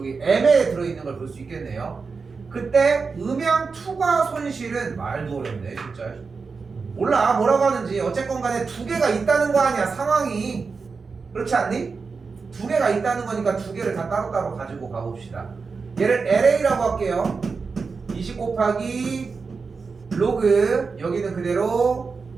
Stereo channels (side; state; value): left; quieter; 4.8 dB